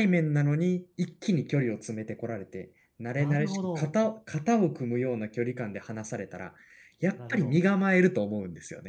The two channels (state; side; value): identical; both; correlation 1.00